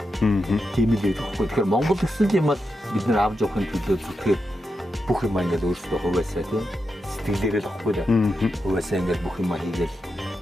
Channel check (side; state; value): both; normal; correlation 0.87